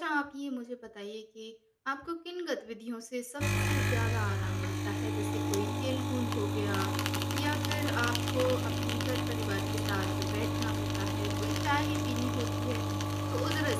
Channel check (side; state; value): both; identical; correlation 1.00